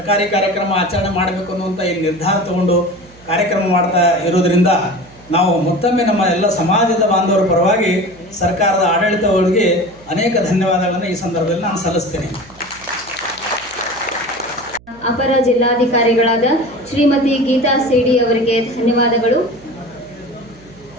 ಕಾರ್ಯಕ್ರಮ ಆಚರಣೆ ಮಾಡಬೇಕು ಅನ್ನುವಂಥ ಈ ನಿರ್ಧಾರ ತಗೊಂಡು ಕಾರ್ಯಕ್ರಮ ಮಾಡ್ತಾ ಇರೋದರಿಂದ ನಾವು ಮತ್ತೊಮ್ಮೆ ನಮ್ಮ ಎಲ್ಲ ಸಮಾಜದ ಬಾಂಧವರ ಪರವಾಗಿ ಸರ್ಕಾರದ ಆಡಳಿತಗಳಿಗೆ ಅನೇಕ ಧನ್ಯವಾದಗಳನ್ನು ಈ ಸಂದರ್ಭದಲ್ಲಿ ನಾನು ಸಲ್ಲಿಸ್ತೇನೆ. ಅಪರ ಜಿಲ್ಲಾಧಿಕಾರಿಗಳಾದ ಶ್ರೀಮತಿ ಗೀತಾ ಸಿಡಿ ಅವರಿಗೆ ಧನ್ಯವಾದಗಳು.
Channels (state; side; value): noise; right; hum, 25 dB below the sound